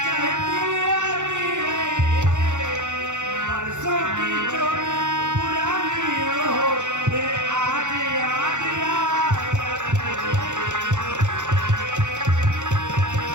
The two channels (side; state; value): left; late; 0.85 ms